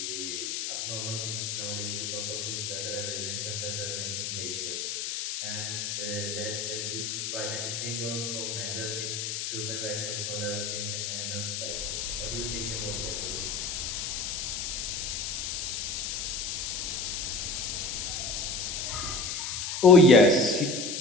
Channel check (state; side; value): noise; left; hiss, 3 dB below the sound